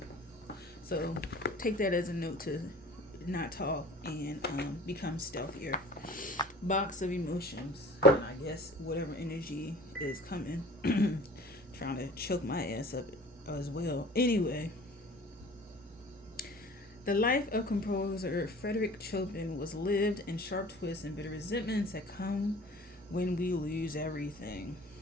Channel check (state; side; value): normal; both; correlation 0.44